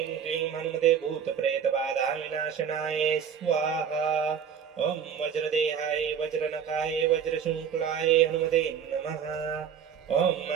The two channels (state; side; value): quieter; left; 7.7 dB